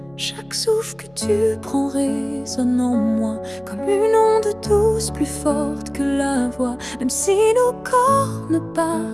Chaque souffle que tu prends résonne en moi comme une onde douce plus forte que la voix. Même si nos corps ne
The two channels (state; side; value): noise; left; hum, 30 dB below the sound